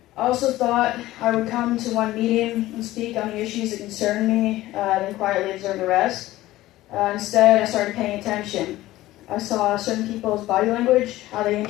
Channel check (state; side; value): quieter; right; 16.4 dB